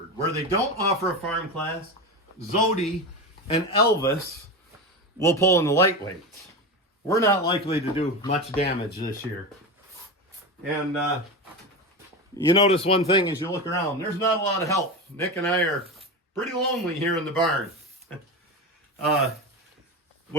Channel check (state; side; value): normal; both; correlation 0.21